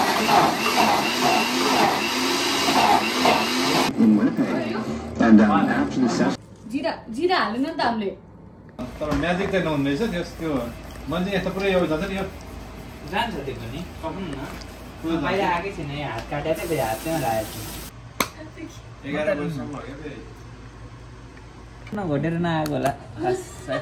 जिरा जिरा हाल्नु नि त हामीले तर म्याजिक चाहिँ नहुँदैछ त्यो मान्छे यस्तो पुरै यो जान्छ नि यो जान्छ त्यो पनि पकाउनु न बाहिर आएकै छैन यहाँ हात काटेर चाहिँ हात त्यहाँ राखेको छु 11 वर्षसम्म हो क्या घटेर नआएको होला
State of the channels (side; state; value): both; identical; correlation 1.00